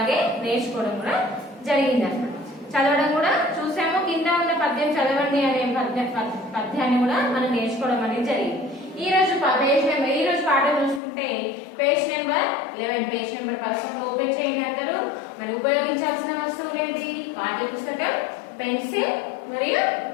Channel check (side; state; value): right; drops out; at 11.0 s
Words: నేర్చుకోవడం కూడా జరిగింది అన్నమాట. చదవడం కూడా చూసాము. కింద ఉన్న పద్యం చదవండి అనే పద్యాన్ని కూడా మనం నేర్చుకోవడం అనేది జరిగింది. ఈ రోజు పాఠం చూసుకుంటే page number 11, page number 11 open చేయండి అందరూ. మరి ఉపయోగించాల్సిన వస్తువులు ఏంటి? పాఠ్య పుస్తకం, పెన్సిల్ మరియు